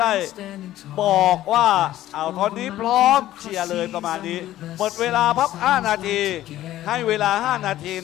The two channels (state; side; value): quieter; right; 14.0 dB